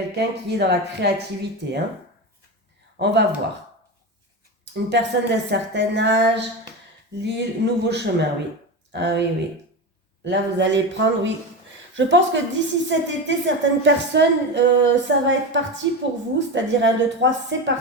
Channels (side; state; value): both; normal; correlation 0.21